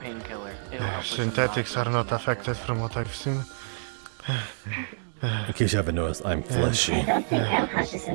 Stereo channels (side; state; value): left; silent; 60 dB below the other